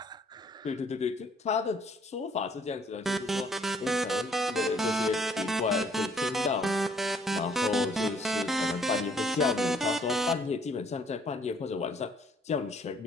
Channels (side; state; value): both; normal; correlation 0.63